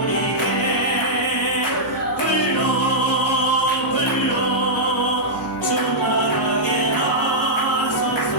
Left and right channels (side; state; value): both; normal; correlation -0.10